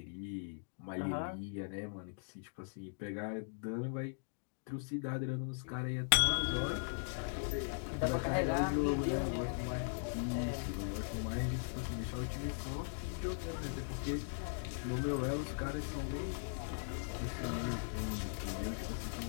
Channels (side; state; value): right; silent; digital silence